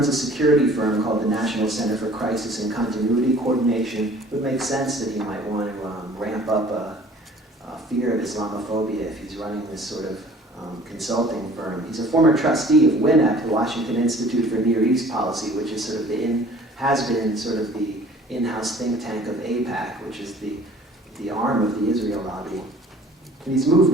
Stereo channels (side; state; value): both; normal; correlation 0.50